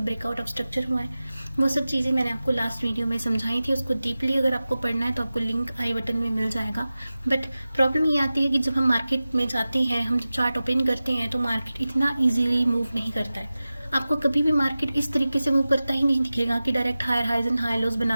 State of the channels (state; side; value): inverted; both; correlation -0.96